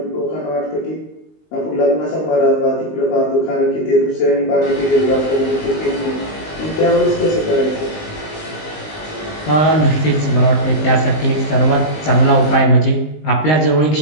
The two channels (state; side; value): late; right; 19 ms